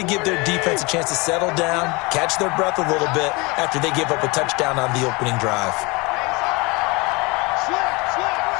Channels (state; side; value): quieter; right; 26.4 dB